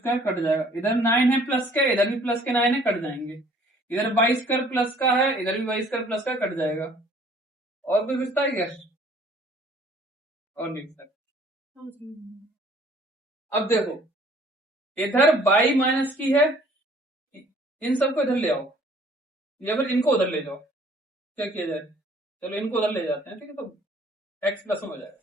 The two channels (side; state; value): both; normal; correlation 0.56